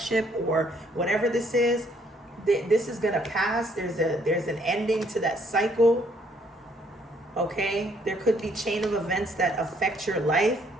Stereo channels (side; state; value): both; normal; correlation 0.66